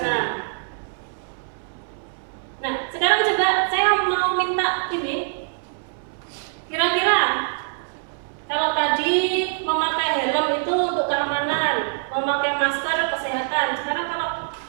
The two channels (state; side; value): silent; left; 63 dB below the other